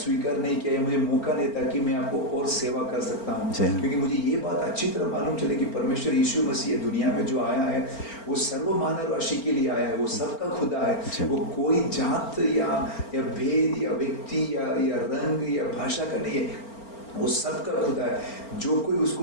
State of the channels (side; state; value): right; late; 4.4 ms